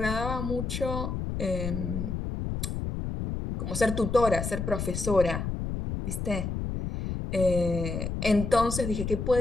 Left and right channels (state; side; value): noise; left; rumble, 3 dB below the sound